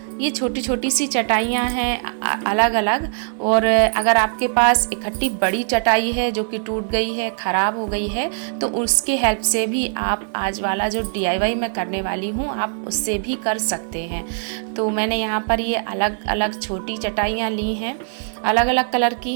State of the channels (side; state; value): left; silent; digital silence